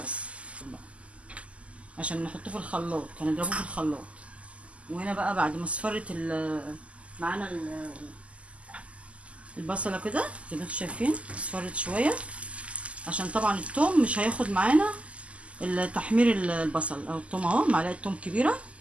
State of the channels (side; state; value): left; late; 0.062 ms